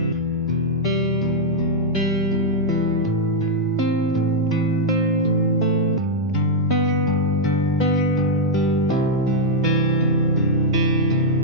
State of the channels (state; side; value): normal; both; correlation -0.03